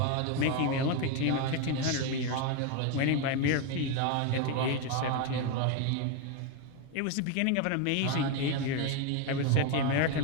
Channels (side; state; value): both; different; correlation 0.02